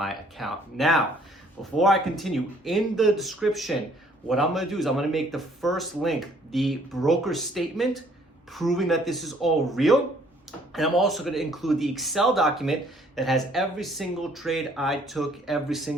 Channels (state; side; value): normal; both; correlation 0.61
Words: account. Now, before I continue, in the description, what I'm gonna do is I'm gonna make the first link the broker statement proving that this is all real. And I'm also gonna include the Excel document that has every single trade I took every